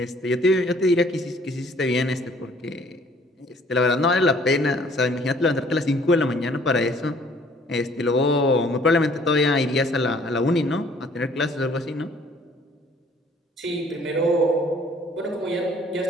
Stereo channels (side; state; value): both; normal; correlation 0.58